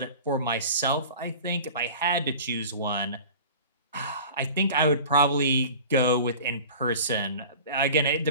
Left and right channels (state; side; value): inverted; both; correlation -0.40